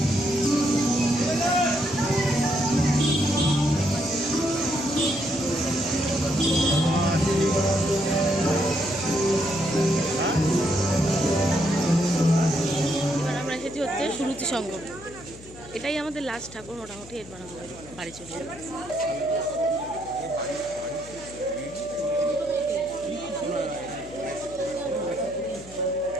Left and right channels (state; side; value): noise; left; hum, 19 dB below the sound